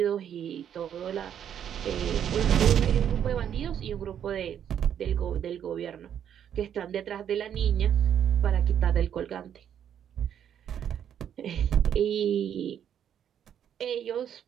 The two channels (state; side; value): quieter; left; 9.3 dB